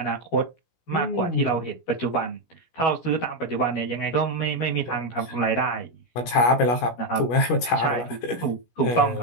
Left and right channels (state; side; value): late; right; 17 ms